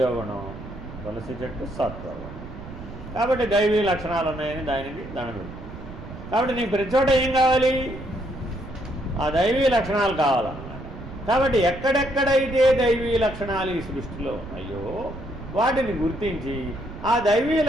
తులసి చెట్టు సత్వగుణం. కాబట్టి దైవీ లక్షణాలు ఉన్నాయని దానికి దండం పెడతాం. కాబట్టి నీకు ప్రతి చోట ఏం కావాలి? ఆ దైవీ లక్షణాలు కావాలన్నమాట. కాబట్టి ఎక్కడెక్కడైతే దైవీ లక్షణాలు ఈ సృష్టిలో ఉన్నాయో వాటిని గుర్తించి ఆ దైవీ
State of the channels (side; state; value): right; noise; rumble, 13 dB below the sound